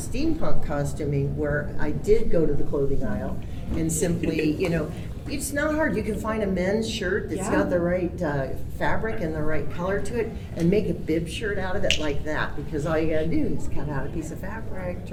costuming where I did go to the clothing aisle and simply, it's not hard. You can find a men's shirt that's got the right fabric and the right color to it and make a bib shirt out of it like that, because all you gotta do is cut out a piece of fabric,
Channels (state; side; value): identical; both; correlation 1.00